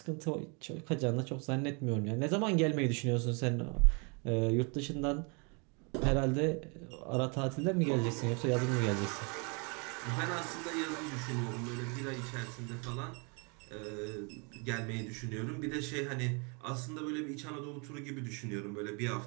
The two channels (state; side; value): quieter; left; 34.2 dB